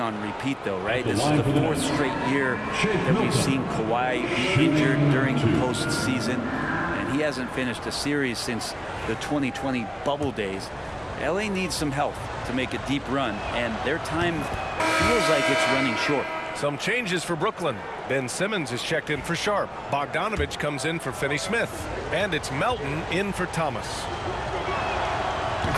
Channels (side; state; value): both; identical; correlation 1.00